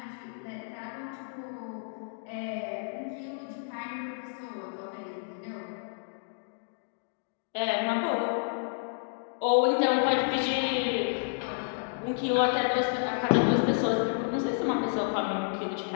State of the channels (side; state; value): right; silent; digital silence